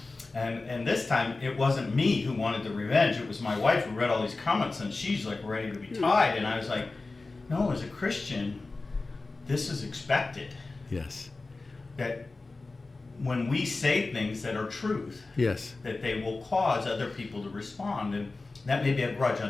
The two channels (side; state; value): right; quieter; 3.5 dB